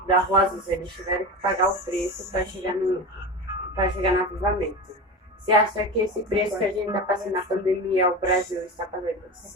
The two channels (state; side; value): normal; both; correlation 0.26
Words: da Rosas, eles tiveram que pagar o preço para chegar no avivamento. Você acha que esse preço que a gente está passando na pandemia, o Brasil está